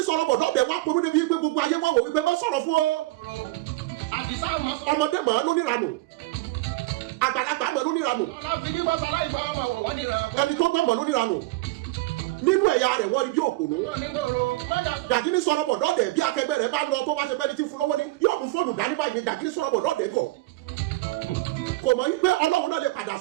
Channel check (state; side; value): quieter; left; 19.5 dB